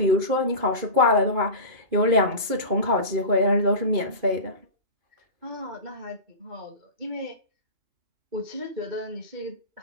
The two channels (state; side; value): late; left; 2.5 ms